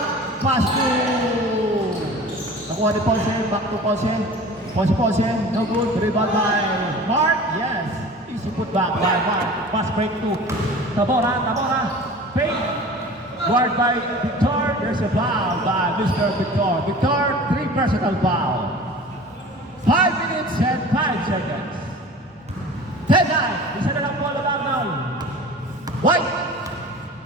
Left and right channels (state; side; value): normal; both; correlation 0.40